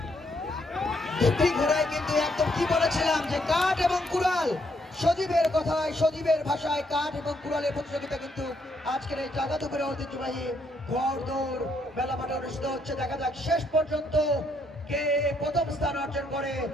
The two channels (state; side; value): normal; both; correlation 0.73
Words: দুটি ঘোড়ায় কিন্তু একদম কি বলেছিলাম যে কাঠ এবং কুড়াল, সজীবের কথায় সজীবের ভাষায় কাঠ এবং কুড়ালের প্রতিযোগিতা কিন্তু আজকের এই জাগাতুপুরে ঐতিহ্যবাহী ঘোড় দৌড় মেলা মাঠে অনুষ্ঠিত হচ্ছে। দেখা যাক শেষ পর্যন্ত কে প্রথম স্থান অর্জন করে।